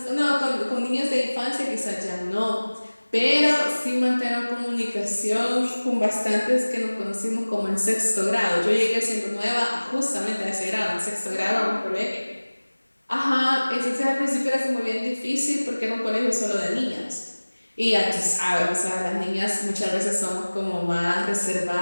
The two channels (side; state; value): both; inverted; correlation -1.00